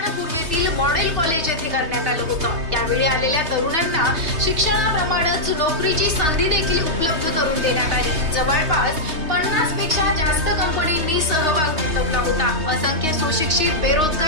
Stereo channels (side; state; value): left; late; 3.2 ms